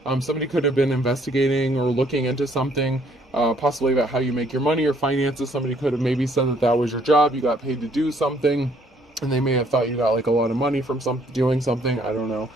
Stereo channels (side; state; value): both; normal; correlation 0.64